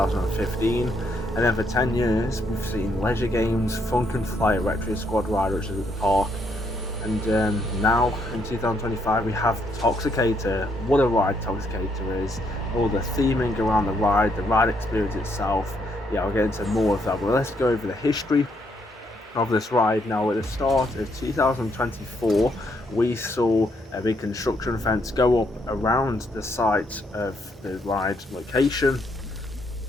and then for 10 years we've seen Leisure Games, Funk and Fly Retro Squad Ride, which is at the park, and now in 2025 we have Toxicator. What a ride Toxicator is! All the theming around the ride experience itself. Yeah, I'll get into more of that, but let's go over the history of this ride. Now, at the start of 2024, we saw a big construction fence go up around the site of the ride location,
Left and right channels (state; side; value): normal; both; correlation 0.73